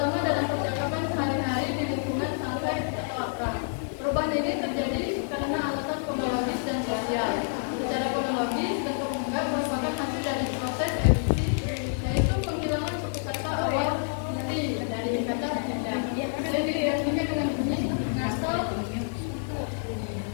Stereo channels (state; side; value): silent; right; digital silence